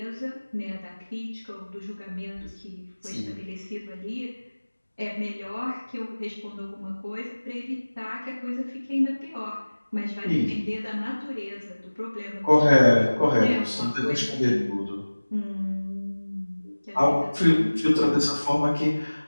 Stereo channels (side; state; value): both; inverted; correlation -1.00